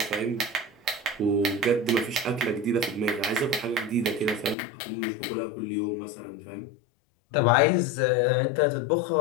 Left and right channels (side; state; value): right; drops out; at 4.5 s